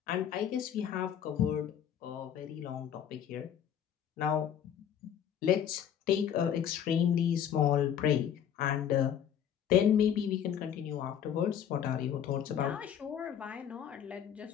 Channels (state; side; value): quieter; right; 9.1 dB